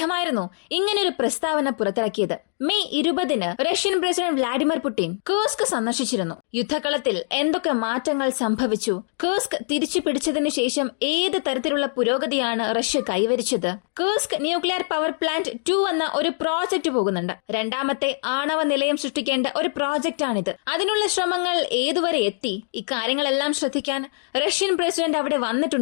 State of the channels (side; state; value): right; silent; digital silence